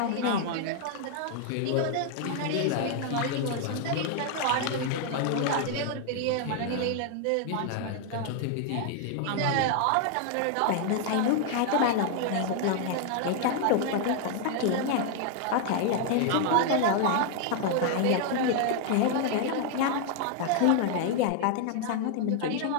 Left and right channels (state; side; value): different; both; correlation 0.00